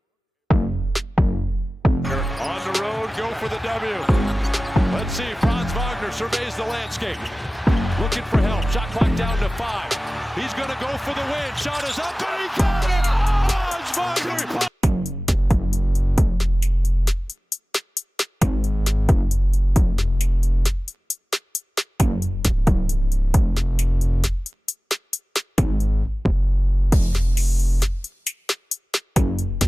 On the road, go for the W. Let's see, Franz Wagner surveys the landscape. Looking for help. Shot clock down to 5. He's going to go for the win. Shot is up and he got it. Franz Wagner.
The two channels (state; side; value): normal; both; correlation 0.97